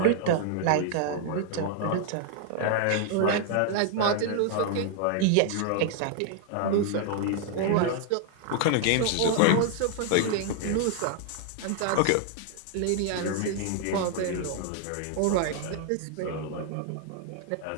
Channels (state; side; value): different; both; correlation 0.00